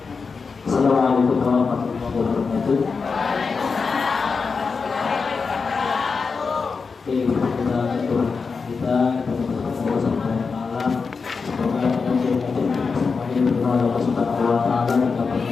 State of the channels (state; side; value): quieter; right; 4.9 dB